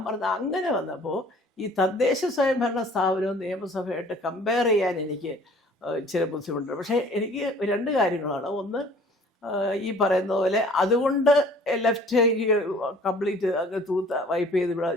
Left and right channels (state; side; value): normal; both; correlation 0.51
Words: പറഞ്ഞത് അങ്ങനെ വന്നപ്പോൾ ഈ തദ്ദേശ സ്വയംഭരണ സ്ഥാപനവും നിയമസഭയായിട്ട് കമ്പയർ ചെയ്യാൻ എനിക്ക് ഇച്ചിരി ബുദ്ധിമുട്ടുണ്ട്. പക്ഷേ എനിക്ക് 2 കാര്യങ്ങളാണ്. ഒന്ന്, ഈ പറയുന്ന പോലെ അതുകൊണ്ട് ലെഫ്റ്റ് കംപ്ലീറ്റ് അങ്ങ് വൈപ്പ് ചെയ്ത് ഇവിടെ